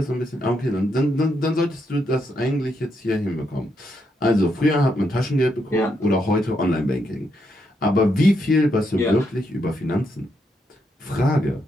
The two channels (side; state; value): both; normal; correlation 0.79